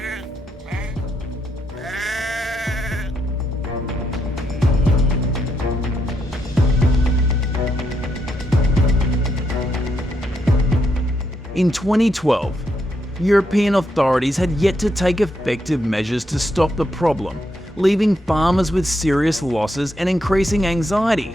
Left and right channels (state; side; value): normal; both; correlation 0.79